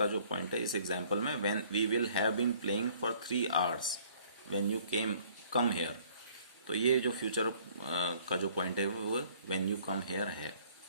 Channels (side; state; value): both; inverted; correlation -0.58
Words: जो पॉइंट है इस एग्जाम्पल में, when we will have been playing for 3 hours when you come here, तो ये जो फ्यूचर का जो पॉइंट है वो व्हेन यू कम हेयर है।